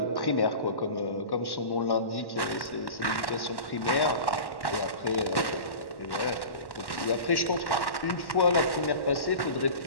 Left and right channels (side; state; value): right; late; 1.1 ms